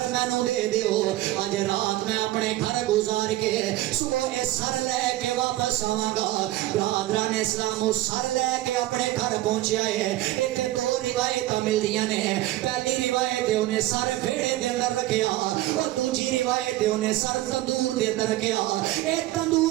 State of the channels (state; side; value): quieter; left; 16.1 dB